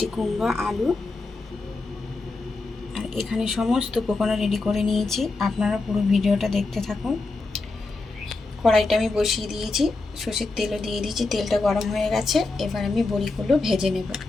কুমড়ো, আলু আর এখানে সমস্ত উপকরণ রেডি করে নিয়েছি। আপনারা পুরো ভিডিওটা দেখতে থাকুন। কড়াইটা আমি বসিয়ে দিয়েছি, সর্ষের তেলও দিয়ে দিয়েছি। তেলটা গরম হয়ে গেছে, এবার আমি বড়িগুলো ভেজে নেব।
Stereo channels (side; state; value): right; quieter; 3.5 dB